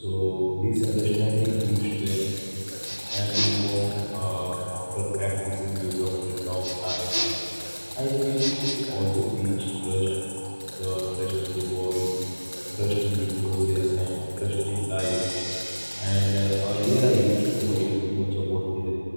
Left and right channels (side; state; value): both; inverted; correlation -1.00